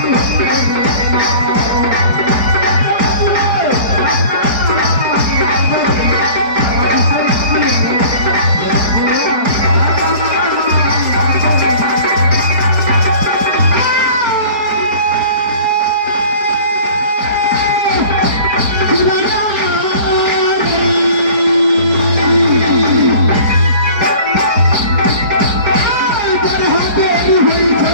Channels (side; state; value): left; late; 4.7 ms